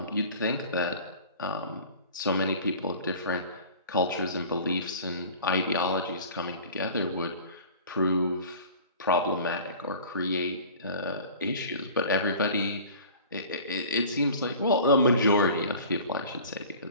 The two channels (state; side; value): inverted; both; correlation -0.43